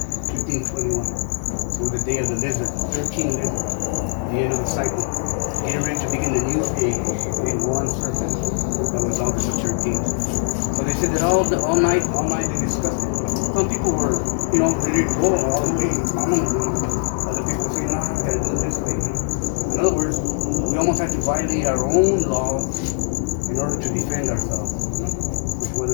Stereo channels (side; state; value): right; silent; digital silence